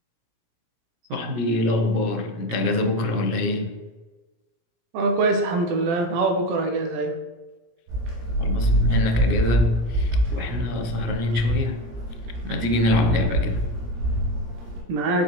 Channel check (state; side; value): late; left; 17 ms